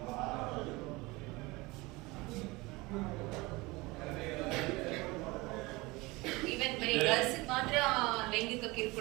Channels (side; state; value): left; quieter; 22.9 dB